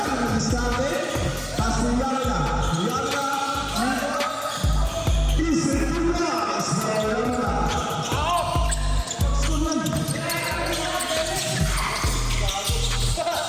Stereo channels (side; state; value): both; identical; correlation 1.00